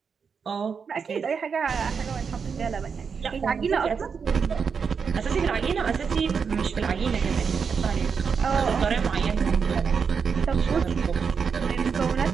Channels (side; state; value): left; quieter; 6.0 dB